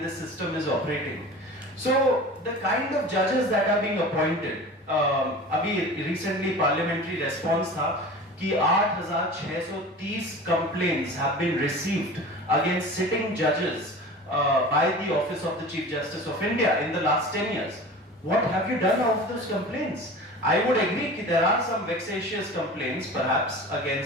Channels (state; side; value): normal; both; correlation 0.37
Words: this system is operating? So the kind of judges that are being appointed, अभी recently parliamentary response था कि 8,630 complaints have been received against sitting judges by the Office of the Chief Justice of India in the last 10 years. What have you done of those complaints? I would agree that there are some vexatious complaints perhaps